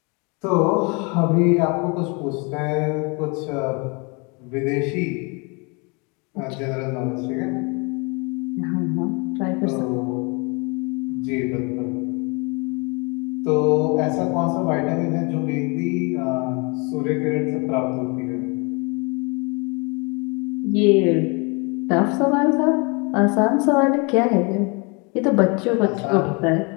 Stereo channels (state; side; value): quieter; right; 30.9 dB